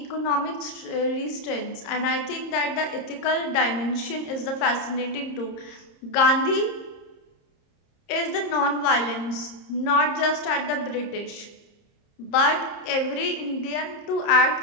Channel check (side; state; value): right; late; 30 ms